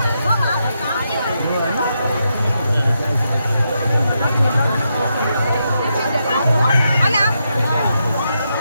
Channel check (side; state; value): both; inverted; correlation -0.83